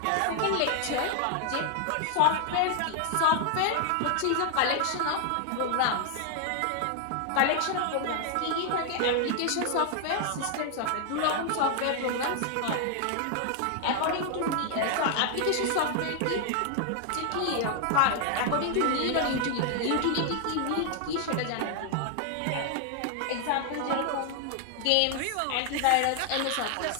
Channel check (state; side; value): different; both; correlation 0.00